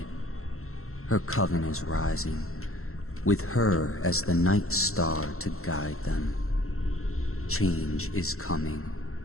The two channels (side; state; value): right; late; 0.63 ms